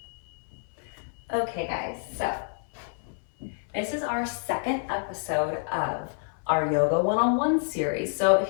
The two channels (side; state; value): right; silent; 59 dB below the other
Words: Okay guys, so this is our second episode of our Yoga 101 series. So